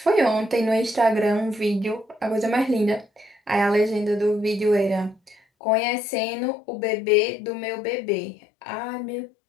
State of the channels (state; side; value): drops out; right; at 5.4 s